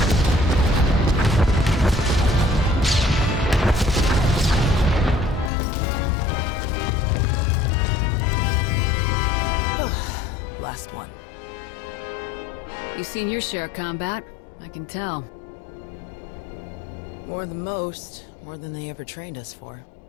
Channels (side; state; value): right; drops out; at 5.5 s